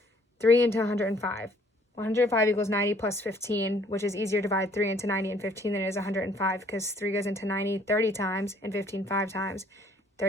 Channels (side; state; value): both; normal; correlation 0.60